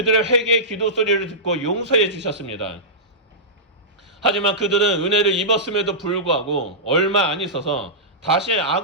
회개의 기도 소리를 듣고 용서해 주셨습니다. 하지만 그들은 은혜를 입었음에도 불구하고 얼마 안 있어서 다시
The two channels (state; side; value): normal; both; correlation -0.16